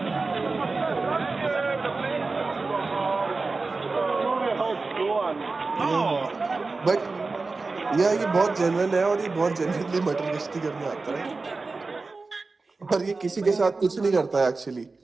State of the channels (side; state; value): left; quieter; 3.8 dB